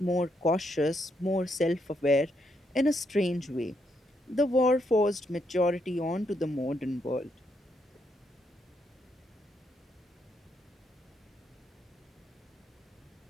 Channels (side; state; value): both; normal; correlation 0.77